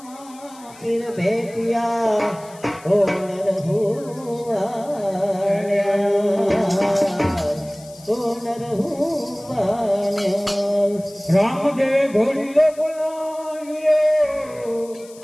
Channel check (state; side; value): noise; left; hiss, 22 dB below the sound